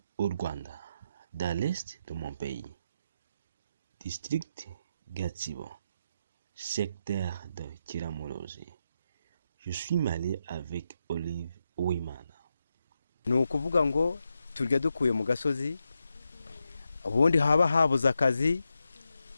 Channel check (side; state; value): both; inverted; correlation -0.85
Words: au Rwanda, dans l'est de mon pays. District Gatsibo, secteur de Kiramuruzi. Je suis marié avec Olive Uwimana. Ni ukuvuga ngo turya dukuye mu gasozi, ubundi haba habuze akazi,